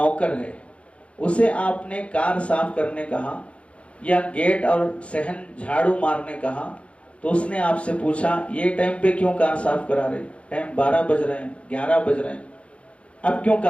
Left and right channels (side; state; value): right; late; 0.061 ms